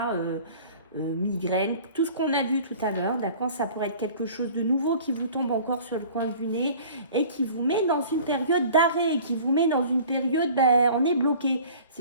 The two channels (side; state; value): both; inverted; correlation -0.46